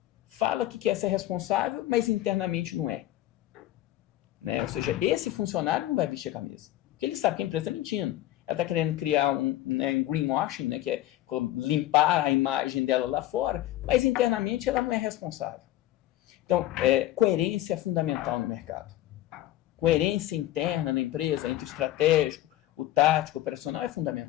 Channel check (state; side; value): quieter; right; 14.6 dB